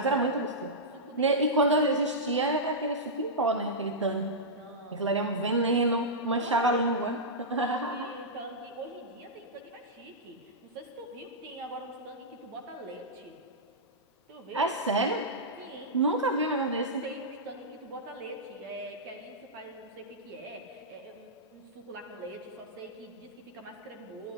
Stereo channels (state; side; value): normal; both; correlation -0.12